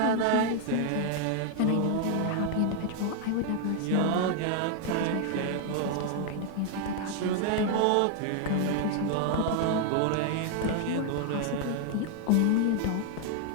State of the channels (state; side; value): different; both; correlation 0.00